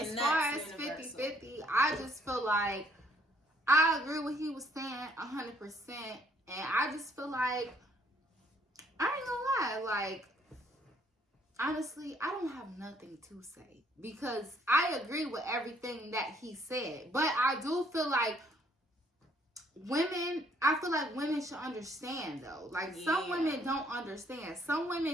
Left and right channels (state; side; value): normal; both; correlation 0.65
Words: as far as that's universal. 50-50, I just feel like I agree with what he was saying 100%. And I just feel like, I ain't gonna lie, like, honestly, I don't have nothing to say. Because I agree with everything that he said. But I do feel like I feel like women should understand though. Like some women don't understand. Some